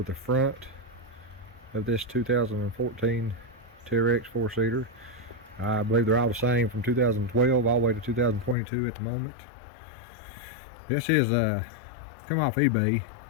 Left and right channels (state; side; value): drops out; right; at 8.6 s